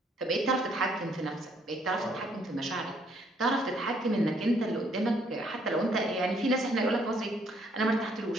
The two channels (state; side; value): normal; both; correlation 0.67